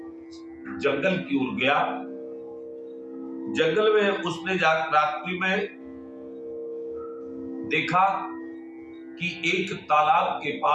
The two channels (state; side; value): identical; both; correlation 1.00